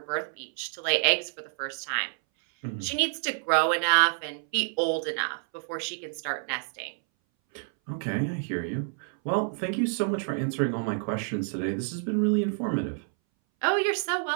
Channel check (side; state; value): left; silent; 59 dB below the other